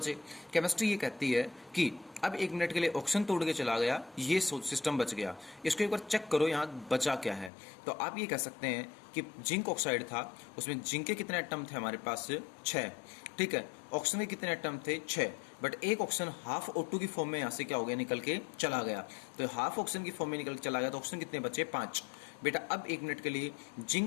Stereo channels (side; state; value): right; drops out; at 7.5 s